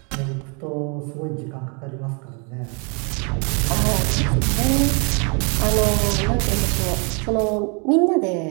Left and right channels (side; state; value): left; quieter; 35.0 dB